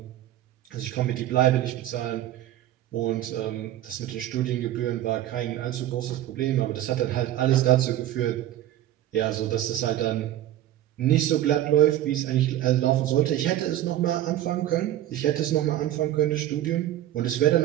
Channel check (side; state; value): left; quieter; 13.2 dB